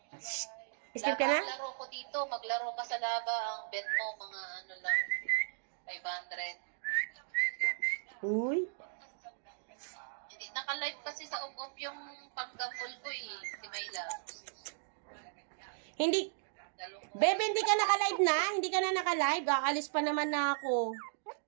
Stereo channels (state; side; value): silent; left; digital silence